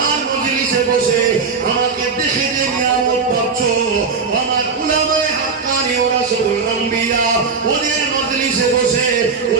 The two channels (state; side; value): quieter; left; 5.1 dB